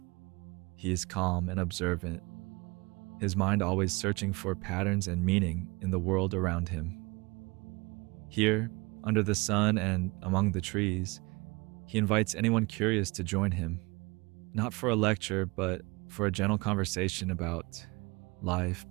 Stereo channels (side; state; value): left; quieter; 25.8 dB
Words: He is calm and observant, his mind always searching for patterns and meaning in the world around him. Here, under the sun and among the trees, he invites anyone curious to join him, not for a lecture, but for a gentle conversation about life,